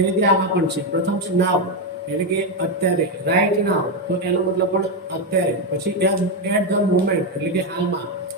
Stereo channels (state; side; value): normal; both; correlation 0.07